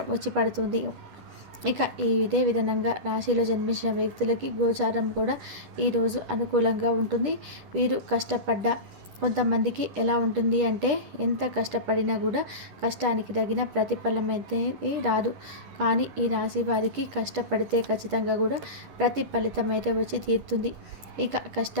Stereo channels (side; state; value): left; late; 10 ms